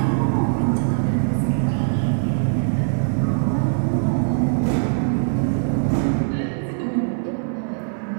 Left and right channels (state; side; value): silent; left; 65 dB below the other